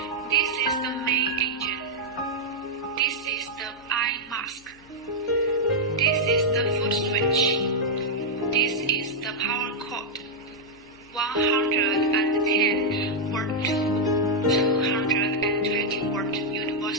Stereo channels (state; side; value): noise; left; hum, 28 dB below the sound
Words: This is the main engine. This is the eye mask. This is the foot switch. This is the power cord. 110 volt to 220 volt